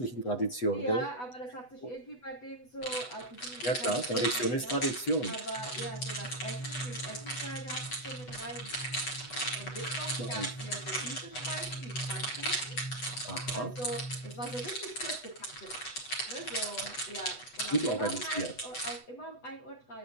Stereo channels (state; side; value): late; right; 8.1 ms